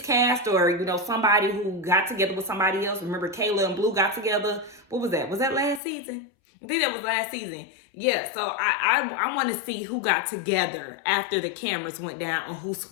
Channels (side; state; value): right; drops out; at 5.8 s